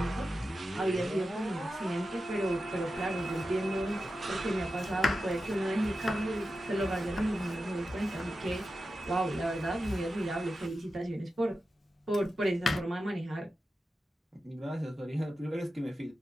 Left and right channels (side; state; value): both; normal; correlation 0.91